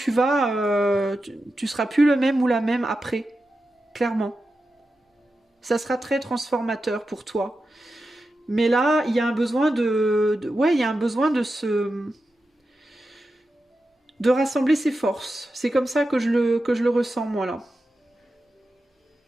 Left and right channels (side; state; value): both; normal; correlation 0.91